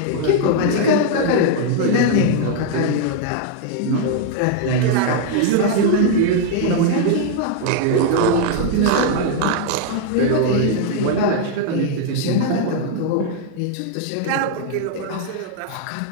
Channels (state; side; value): different; both; correlation 0.00